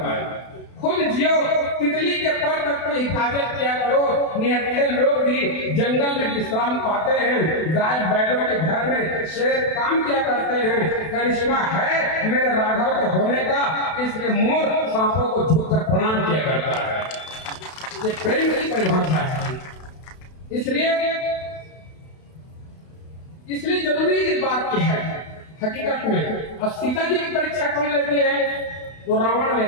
खुद जियो, तितली के पर तक की हिफाजत किया करो। निहत्थे लोग भी जंगल में विश्राम पाते हैं, गाय बैलों के घर में शेर काम किया करते हैं। करिश्मा है मेरे राघव के होने का, इसलिए मोर सांपों को झुककर प्रणाम किया करता है। ये प्रेम की परिभाषा है। इसलिए जरूरी इस बात की है हकीकत में। अब सीता जी की परीक्षा कौन लेती है? तो रावण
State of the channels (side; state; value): right; late; 32 ms